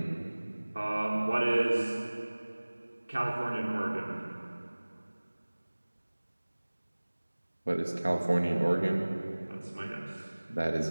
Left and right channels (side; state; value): both; inverted; correlation -1.00